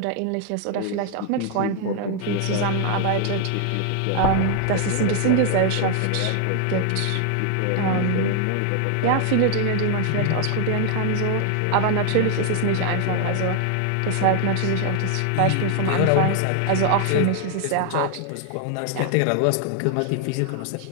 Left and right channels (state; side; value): different; both; correlation 0.00